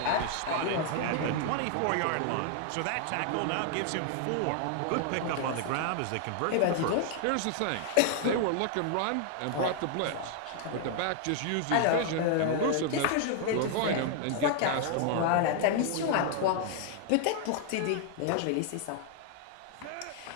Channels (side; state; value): both; different; correlation 0.00